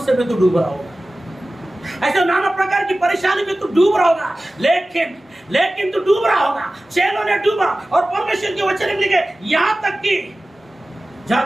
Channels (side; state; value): both; normal; correlation 0.96